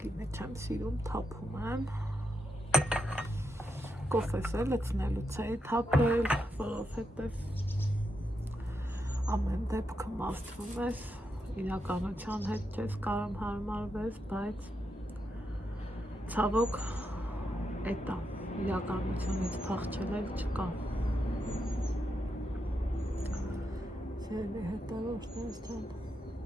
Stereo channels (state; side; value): normal; both; correlation 0.84